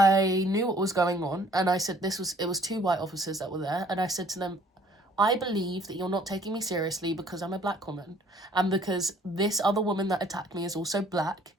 knew what was going on. And I said it was 2 white officers that were there. And I said to them, I believe that you're not taking me seriously because I'm a black woman. And because this other woman that attacked me is also black.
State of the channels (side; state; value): both; normal; correlation 0.58